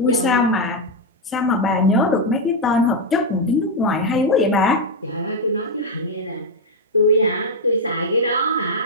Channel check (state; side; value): normal; both; correlation 0.02